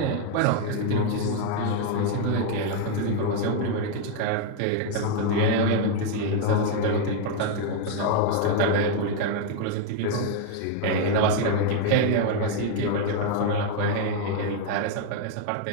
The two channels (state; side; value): different; both; correlation 0.01